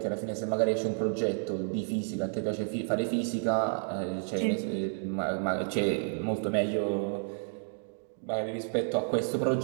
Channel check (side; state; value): left; silent; 56 dB below the other